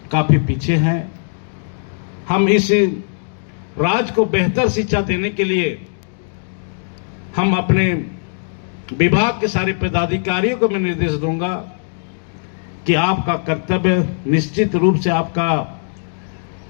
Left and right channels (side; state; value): right; silent; digital silence